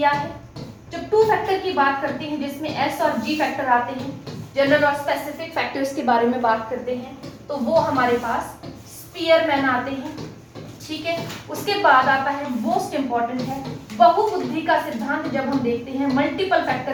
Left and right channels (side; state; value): both; identical; correlation 1.00